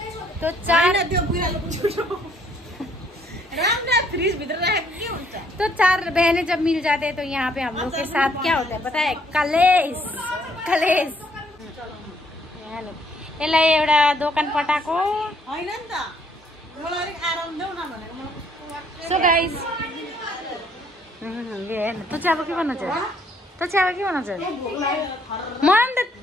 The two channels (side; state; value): both; normal; correlation 0.66